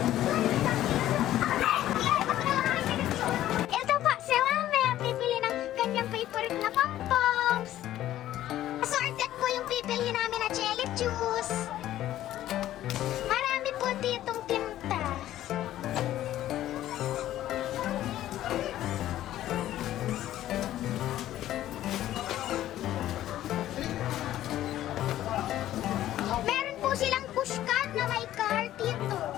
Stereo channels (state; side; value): quieter; right; 13.3 dB